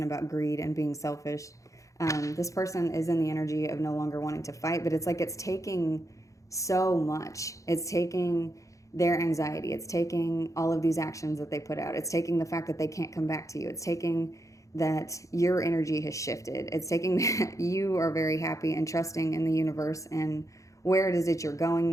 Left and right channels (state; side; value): late; right; 0.15 ms